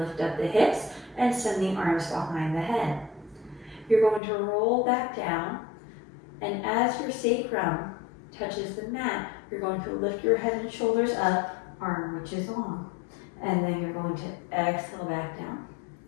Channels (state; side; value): drops out; right; at 4.2 s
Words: up the hips and send the arms behind the head. You're going to roll back down, and as your sacrum touches the mat, you're going to lift your head and shoulders up, arm reaches long. And then you're going to exhale back down.